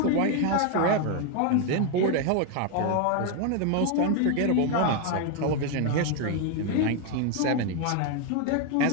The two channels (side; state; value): both; different; correlation 0.01